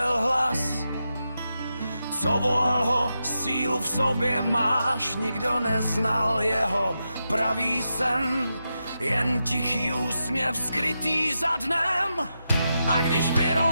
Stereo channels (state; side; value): inverted; both; correlation -0.87